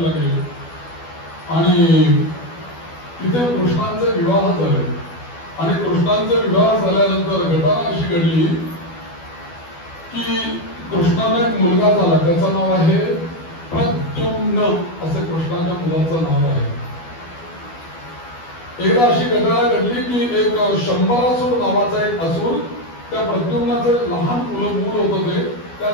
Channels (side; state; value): right; late; 12 ms